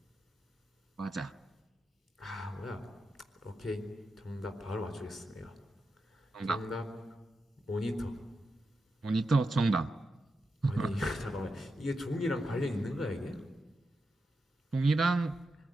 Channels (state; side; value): normal; both; correlation 0.88